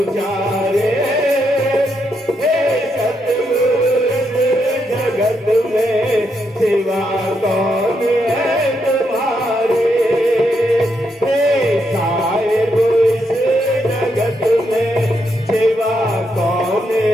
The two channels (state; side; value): normal; both; correlation 0.80